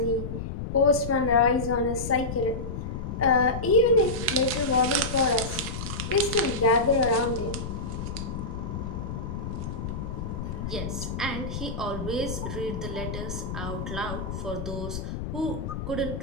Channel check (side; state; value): left; noise; rumble, 5 dB below the sound